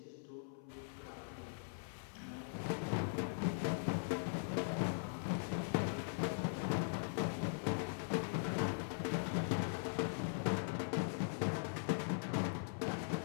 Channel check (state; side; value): silent; right; 50 dB below the other